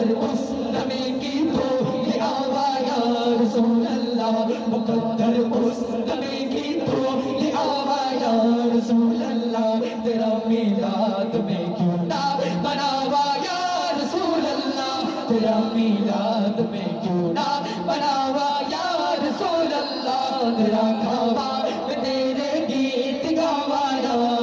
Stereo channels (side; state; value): both; identical; correlation 1.00